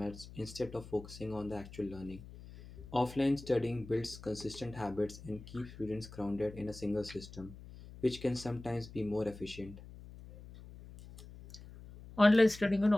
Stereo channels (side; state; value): left; noise; hum, 16 dB below the sound